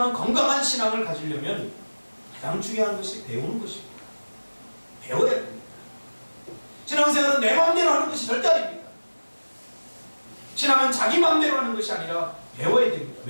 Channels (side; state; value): both; inverted; correlation -1.00